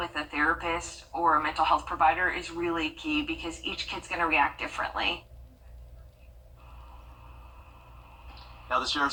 a therapist or a mental health provider is really key, because each kid's going to react differently. Now, the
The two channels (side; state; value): both; identical; correlation 1.00